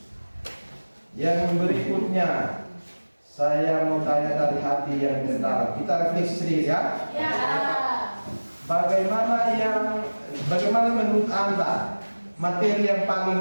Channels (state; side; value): inverted; both; correlation -1.00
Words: Yang berikutnya, saya mau tanya dari hati yang terdalam. Kita refleksi sedikit ya. ya. Bagaimana menurut Anda materi yang paling